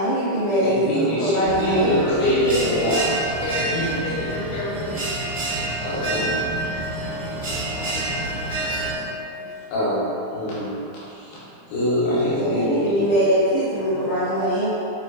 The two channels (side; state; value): right; late; 25 ms